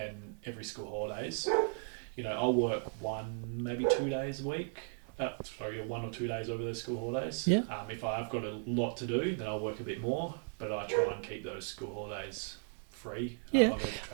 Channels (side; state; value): left; silent; 54 dB below the other